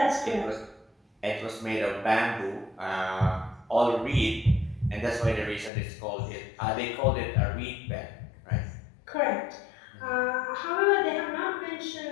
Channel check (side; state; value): right; drops out; at 5.7 s